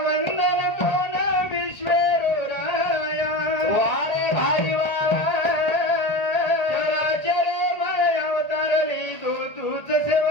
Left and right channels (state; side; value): late; right; 1.8 ms